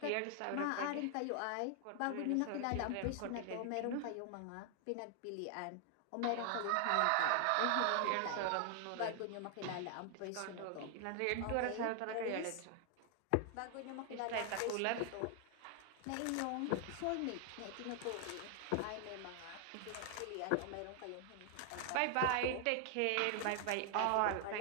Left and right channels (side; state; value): both; different; correlation 0.00